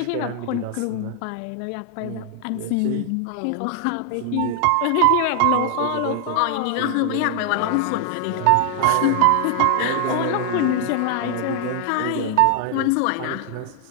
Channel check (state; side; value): different; both; correlation 0.00